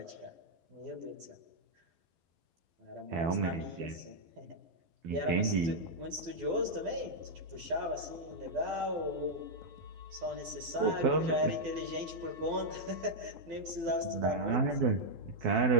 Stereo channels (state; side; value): late; left; 12 ms